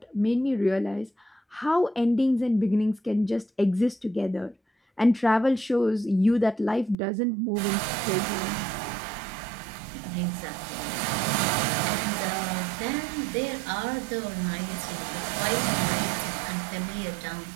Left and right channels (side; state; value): left; drops out; at 7.0 s